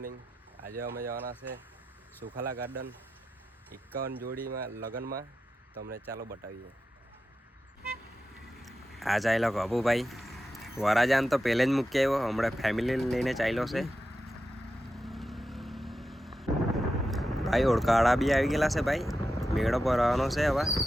આજે અમે જવાના છે સુખાલા ગાર્ડન 51 જોડીમાં લગ્નમાં. તમને ચાલો બતાવીએ. આ ચાલ્યો કબુભાઈ વરાજાન તો પહેલે જ મૂકી આવ્યો, હમણાં ફેમિલી લઈને ચાલ્યો છે. ભાઈ ઓળખાવાળા બી આવી ગયેલા છે. ભાઈ મેળો ભરવાનો છે, હવે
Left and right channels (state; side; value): normal; both; correlation 0.90